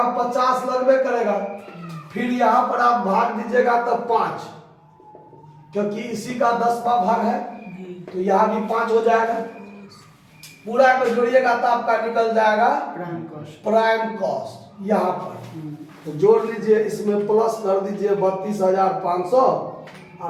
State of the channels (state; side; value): identical; both; correlation 1.00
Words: 50 लगबे करेगा, फिर यहाँ पर आप भाग दीजिएगा तो 5, क्योंकि इसी का 10वां भाग है तो यहाँ भी 5 हो जाएगा। पूरा को जोड़िएगा तो आपका निकल जाएगा प्राइम कॉस्ट यहाँ पर। तो जोड़ लीजिए, इसमें प्लस कर दीजिए 32,500